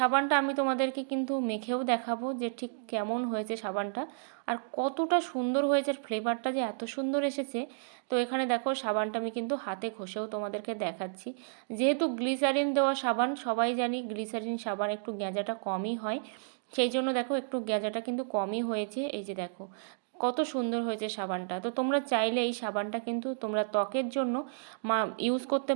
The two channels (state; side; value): silent; left; digital silence